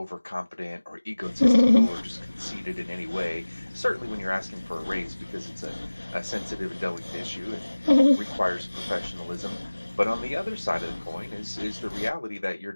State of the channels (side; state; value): both; inverted; correlation -1.00